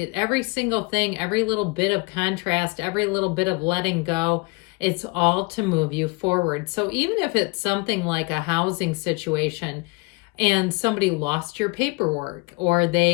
single thing, every little bit of contrast, every little bit of letting go, it's all to move you forward. So even if it's something like a housing situation and somebody lost your paperwork or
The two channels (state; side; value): quieter; right; 28.2 dB